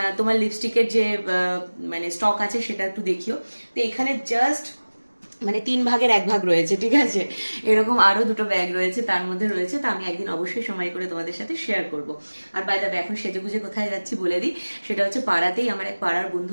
তোমার লিপস্টিকের যে মানে স্টক আছে সেটা একটু দেখিও। তো এখানে জাস্ট মানে 3 ভাগের 1 ভাগ রয়েছে, ঠিক আছে। এরকম আরো দুটো ব্যাগ রয়েছে, তার মধ্যে রয়েছে, তা আমি একদিন অবশ্যই সময় করে তোমাদের সাথে শেয়ার করব। আর বাই দ্য ওয়ে, এখন সেজে গুজে কোথায় যাচ্ছি বলে দিই। সেটা হচ্ছে পাড়াতেই আমার এক পাড়ার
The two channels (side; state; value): both; inverted; correlation -1.00